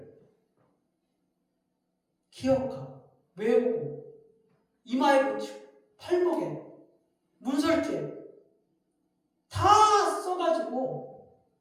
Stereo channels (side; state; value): both; identical; correlation 1.00